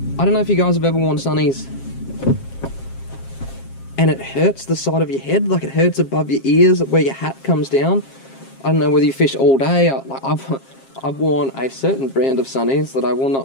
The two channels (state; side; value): late; right; 7.5 ms